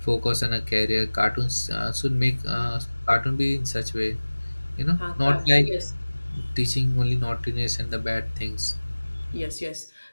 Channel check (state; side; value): inverted; both; correlation -1.00